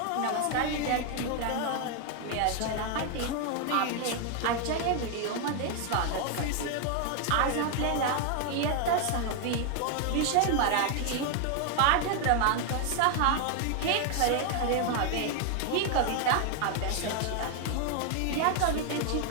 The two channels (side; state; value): both; different; correlation 0.00